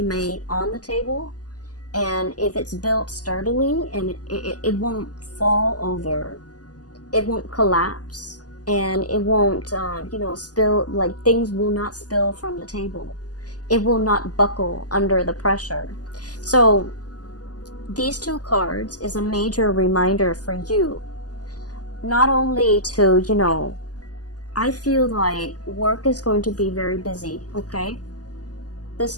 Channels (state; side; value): late; right; 0.68 ms